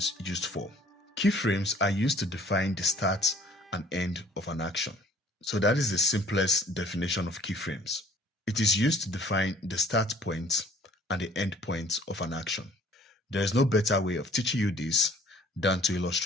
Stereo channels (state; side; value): normal; both; correlation 0.55